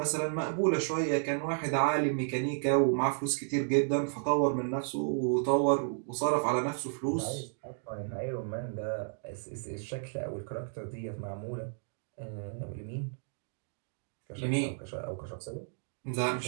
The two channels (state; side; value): silent; left; digital silence